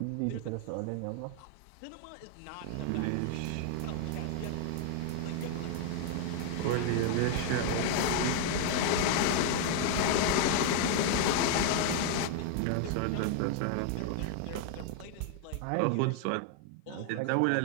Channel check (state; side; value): different; both; correlation 0.00